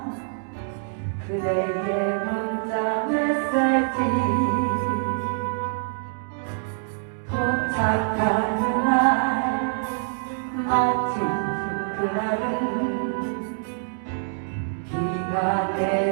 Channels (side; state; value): left; silent; digital silence